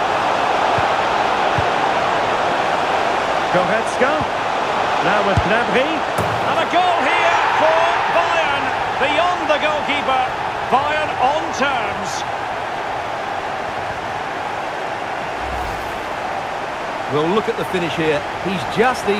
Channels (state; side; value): identical; both; correlation 1.00